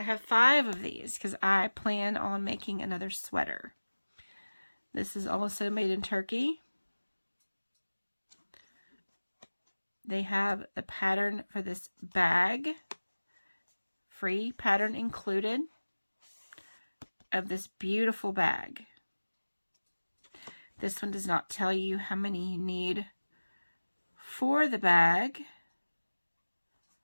have 5 of these because I plan on making another sweater. This is also made in Turkey. They have the pattern for this bag, free pattern included, of this beautiful bag. This one does not tell you how many you need for the bag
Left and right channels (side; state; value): both; inverted; correlation -1.00